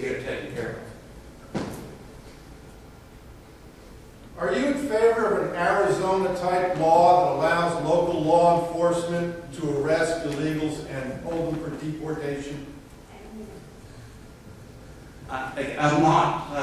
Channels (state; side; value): identical; both; correlation 1.00